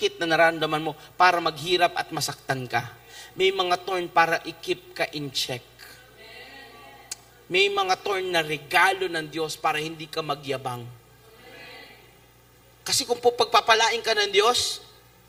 na nararamdaman mo para maghirap at masaktan ka. May mga thorn para i-keep ka in check. May mga thorn na regalo ng Diyos para hindi ka magyabang. Kasi kung pagpapalain ka ng Diyos,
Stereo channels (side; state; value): both; identical; correlation 1.00